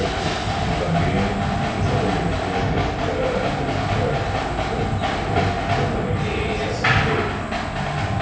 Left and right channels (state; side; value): identical; both; correlation 1.00